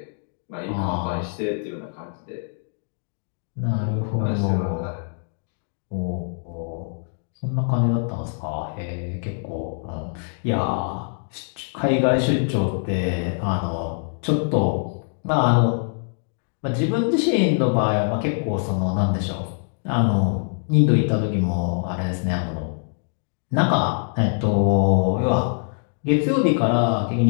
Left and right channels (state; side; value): silent; right; digital silence